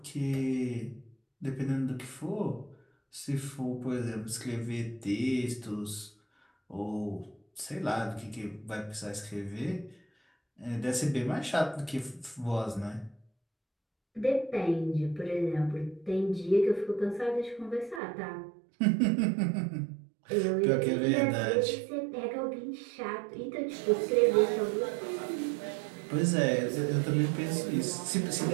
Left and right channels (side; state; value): left; drops out; at 18.0 s